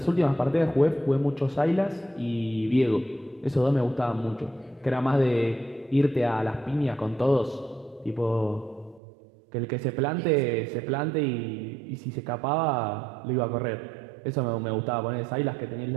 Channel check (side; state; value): left; drops out; at 9.0 s